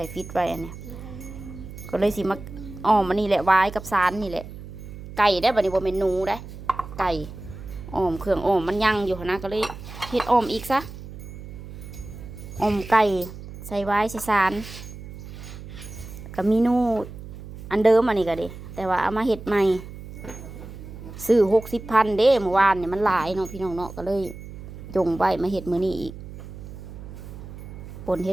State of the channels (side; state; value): right; noise; hum, 13 dB below the sound